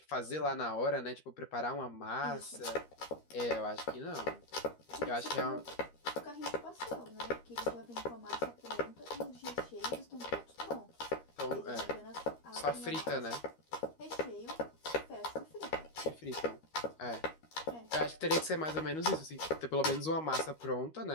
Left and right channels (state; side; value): late; right; 13 ms